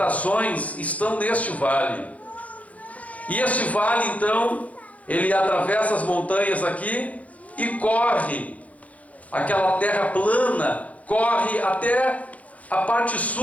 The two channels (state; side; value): late; right; 0.068 ms